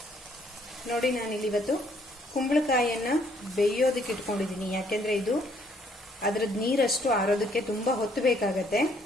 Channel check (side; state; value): both; normal; correlation 0.66